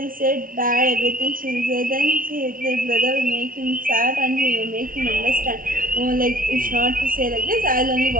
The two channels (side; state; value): left; late; 0.41 ms